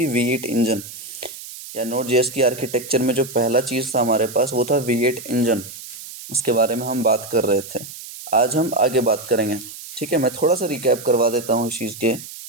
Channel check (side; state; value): right; noise; hiss, 13 dB below the sound